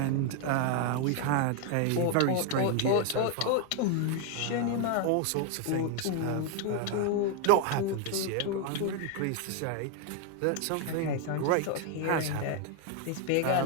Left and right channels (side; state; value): both; different; correlation 0.01